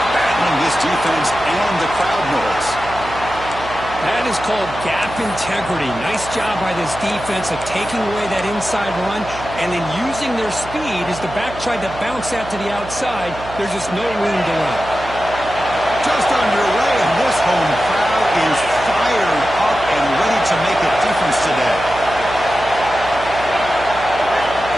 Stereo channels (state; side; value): noise; right; hum, 14 dB below the sound